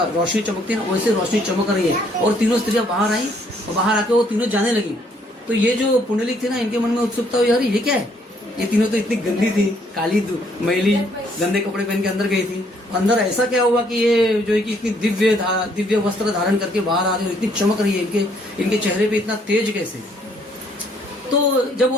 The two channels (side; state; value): both; normal; correlation 0.67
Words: रोशनी चमकती है ना, वैसे रोशनी चमक रही है। और तीनों स्त्रियां बाहर आई और बाहर आके वो तीनों जाने लगी। तो ये जो पुंडलिक थे ना, इनके मन में उत्सुकता हुई, अरे ये क्या है, ये तीनों तो इतनी गंदी थी, काली मैली गंदे कपड़े पहन के अंदर गई थी, अंदर ऐसा क्या हुआ कि ये जो है कि इतनी दिव्य वस्त्र धारण करके बाहर आ रही है, इतनी चमक रही है, इनके चेहरे पे इतना तेज कैसे। तो जब